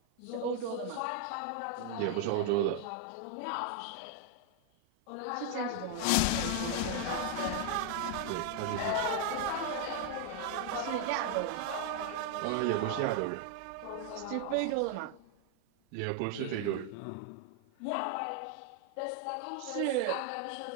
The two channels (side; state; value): both; different; correlation 0.00